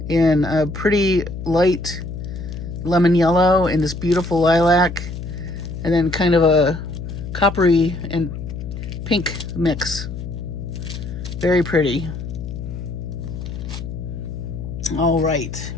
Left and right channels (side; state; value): left; noise; hum, 8 dB below the sound